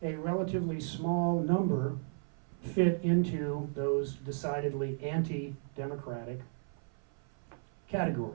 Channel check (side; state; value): left; silent; 55 dB below the other